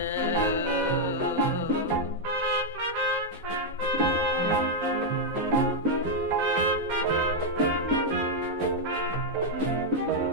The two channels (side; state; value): both; normal; correlation -0.02